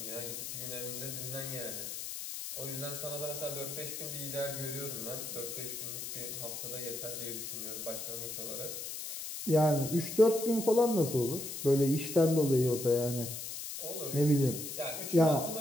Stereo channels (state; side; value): noise; left; hiss, 7 dB below the sound